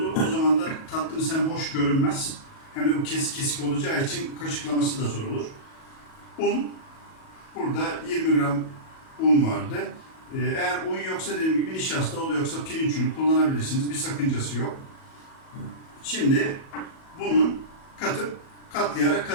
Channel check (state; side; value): late; right; 37 ms